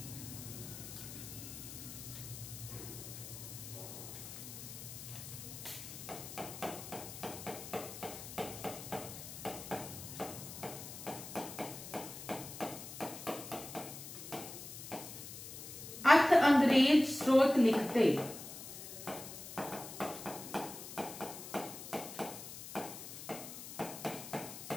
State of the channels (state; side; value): noise; left; hiss, 11 dB below the sound